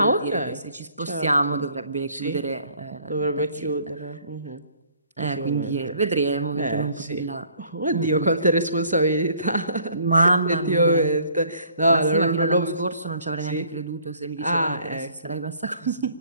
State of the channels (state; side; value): inverted; both; correlation -0.59